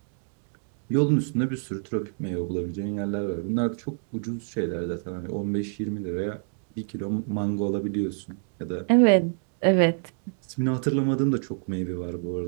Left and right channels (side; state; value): left; silent; 57 dB below the other